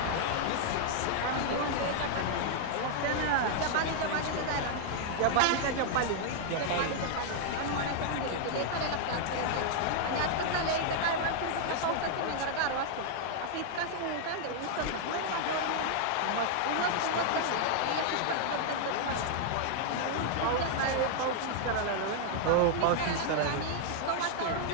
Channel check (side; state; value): both; different; correlation -0.01